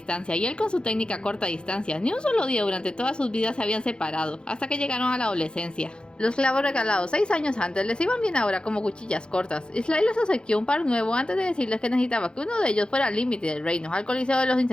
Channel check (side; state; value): right; late; 0.051 ms